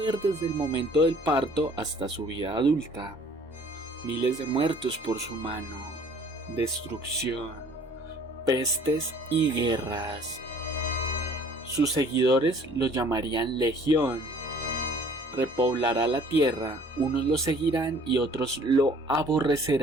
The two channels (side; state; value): both; normal; correlation 0.54